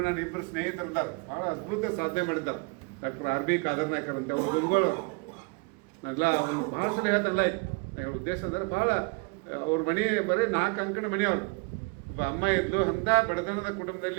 ನನ್ನ ಇಬ್ಬರು ಸ್ನೇಹಿತರಿದ್ದಾರೆ, ಬಹಳ ಅದ್ಭುತ ಸಾಧನೆ ಮಾಡಿದ್ದಾರೆ. ಡಾಕ್ಟರ್ RB ಕಾದರ್ನಾಯ್ಕರ್ ಅಂತ ಅವ್ರು ಗುರುಗಳವರು. ನಾವೆಲ್ಲ ಒಂದು ಭಾಳ ಸಲ ಹೇಳ್ತಲ್ಲ, ಉದ್ದೇಶ ಅಂದ್ರೆ ಭಾಳ ಅವ್ರ ಮನೆ ಬರೀ 4 ಅಂಕಣ ಮನೆಯವರು. ಒಬ್ಬ ಅಮ್ಮ ಇದ್ಲು, ಅಂಥ ಬಡತನದ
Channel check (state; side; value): quieter; left; 30.2 dB